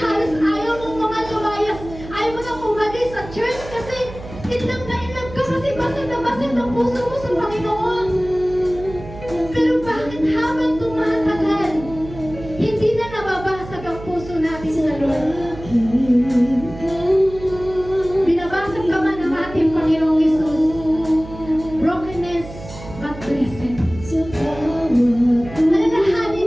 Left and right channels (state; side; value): noise; right; hum, 14 dB below the sound